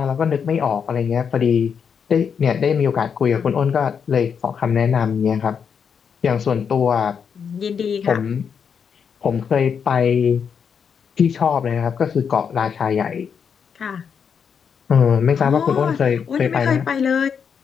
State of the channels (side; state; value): right; quieter; 6.9 dB